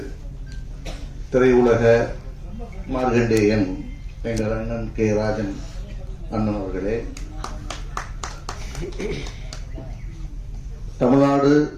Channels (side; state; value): both; identical; correlation 1.00